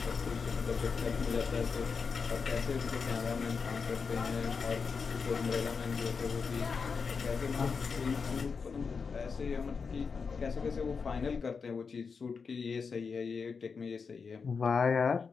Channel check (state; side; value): quieter; right; 5.3 dB